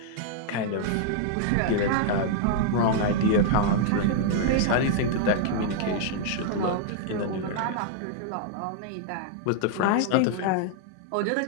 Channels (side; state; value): both; different; correlation -0.01